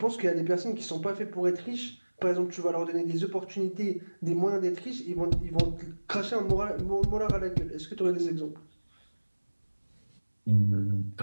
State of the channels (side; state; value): both; inverted; correlation -1.00